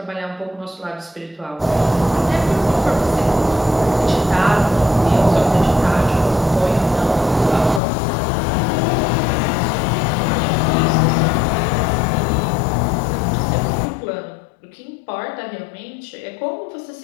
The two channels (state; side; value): drops out; right; at 7.8 s